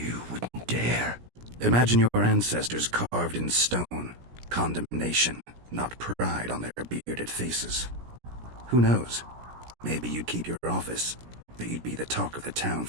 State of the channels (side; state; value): left; late; 17 ms